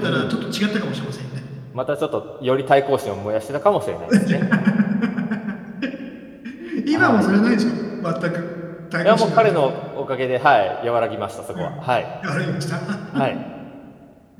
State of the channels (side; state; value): both; identical; correlation 1.00